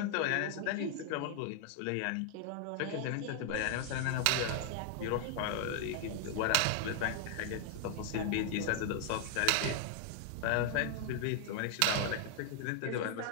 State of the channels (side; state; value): both; different; correlation 0.00